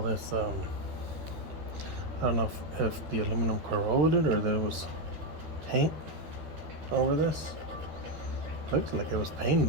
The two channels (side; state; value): left; late; 13 ms